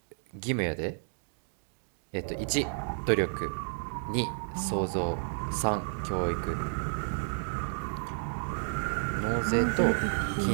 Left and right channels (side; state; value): left; silent; digital silence